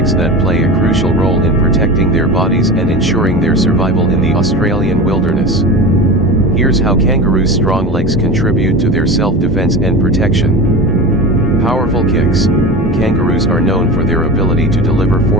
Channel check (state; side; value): normal; both; correlation 0.29